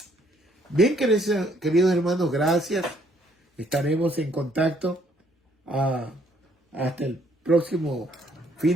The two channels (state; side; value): normal; both; correlation 0.66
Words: Bien, queridos hermanos, gracias. Estaremos en contacto hasta el próximo